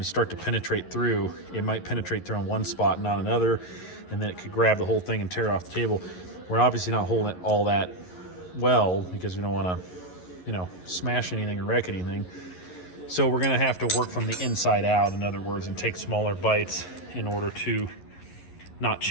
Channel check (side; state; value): right; late; 11 ms